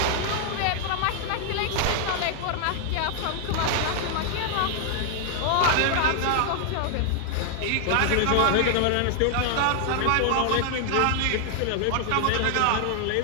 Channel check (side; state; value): both; different; correlation 0.00